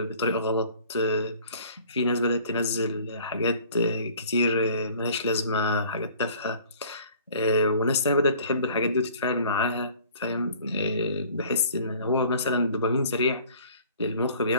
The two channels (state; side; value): inverted; both; correlation -0.51